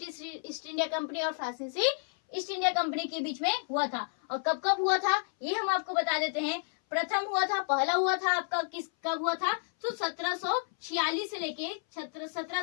ईस्ट इंडिया कंपनी और फ्रांसीसी ईस्ट इंडिया कंपनी के बीच में हुआ था। और कब कब हुआ था ये हम आपको बता देते हैं। प्रथम हुआ था, पहला हुआ था आपका कब हुआ था? तो 1746 से लेके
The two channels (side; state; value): right; silent; 57 dB below the other